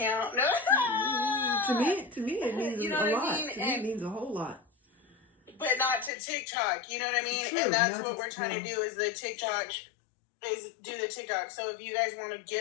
No. To me, it means You know a what I lot. mean? To me, it means a whole lot. But not to TikTok. You know what I mean? True, and that's not what to- we're trying to do is the TikTok. Is do the TikTok. So if you guys want to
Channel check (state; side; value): drops out; right; at 6.1 s